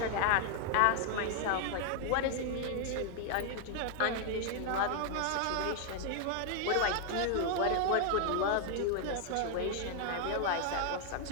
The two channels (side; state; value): both; different; correlation 0.00